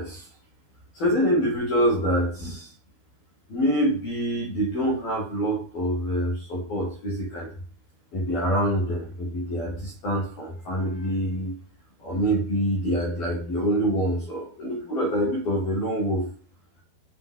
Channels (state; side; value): late; right; 12 ms